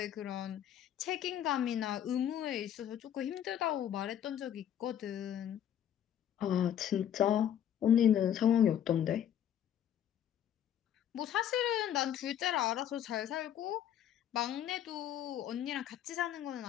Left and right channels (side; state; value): right; quieter; 10.1 dB